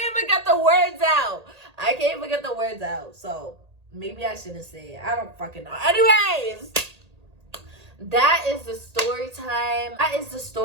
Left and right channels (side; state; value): left; late; 1.8 ms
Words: even get the words out. So, maybe I shouldn't say it. I don't fucking know. Anyways, that is the story time. That is the